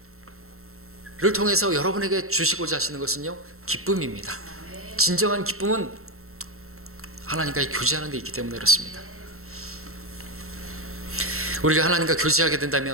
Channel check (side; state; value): left; late; 0.63 ms